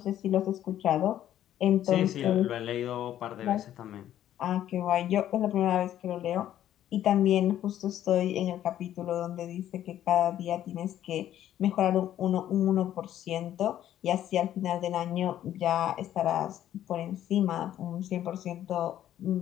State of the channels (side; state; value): right; quieter; 11.7 dB